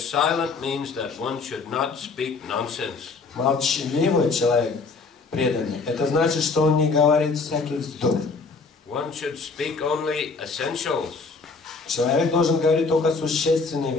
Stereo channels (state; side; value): quieter; right; 4.4 dB